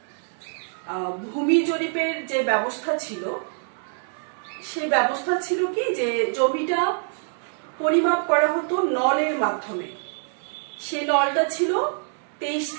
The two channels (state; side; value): silent; left; 62 dB below the other